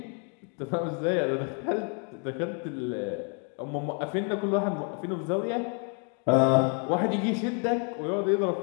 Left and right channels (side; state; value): right; quieter; 39.8 dB